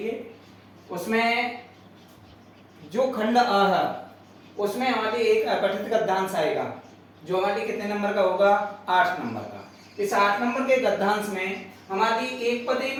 उसमें जो खंड अ है उसमें हमारे एक अपठित गद्यांश आएगा जो हमारे कितने नंबर का होगा, 8 नंबर का। इस 8 नंबर के गद्यांश में हमारी एक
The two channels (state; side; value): identical; both; correlation 1.00